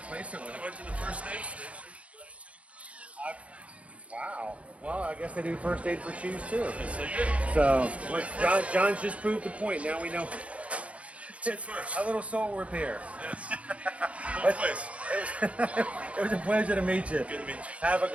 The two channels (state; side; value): late; left; 0.064 ms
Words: it with. I went to the first aid station. Wow. Well, I guess they do first aid for shoes too. Yes, they did. So, John's just proved the point. Now we know. First. A little soul repair. Yes. No place. It was a pleasure to meet you. Good to meet you. Have a